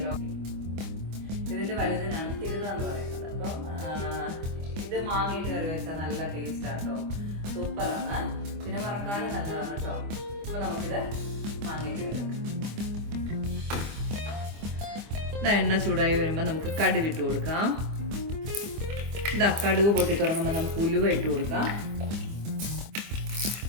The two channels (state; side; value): late; left; 25 ms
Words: ഇതിൻ്റെ വലുതിനാണ് തിരുത എന്ന് പറയുന്നത്. അപ്പം ഇത് മാങ്ങിയിട്ട് കറി വെച്ചാൽ നല്ല ടേസ്റ്റാണ് കേട്ടോ, സൂപ്പറാണ്. പിന്നെ വറക്കാനും നല്ലതാണ് കേട്ടോ. അപ്പോൾ നമുക്കിത് മാങ്ങിയിട്ട് കറി വെക്കാം. എണ്ണ ചൂടായി വരുമ്പോൾ നമുക്ക് കടുക് ഇട്ട് കൊടുക്കാം. കടുക് പൊട്ടി തുടങ്ങുമ്പോൾ നമുക്ക് ഉലുവ ഇട്ട് കൊടുക്കാം.